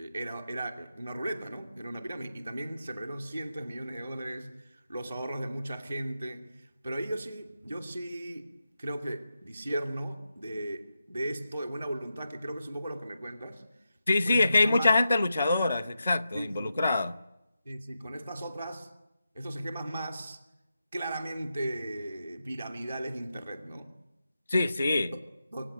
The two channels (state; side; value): inverted; both; correlation -0.88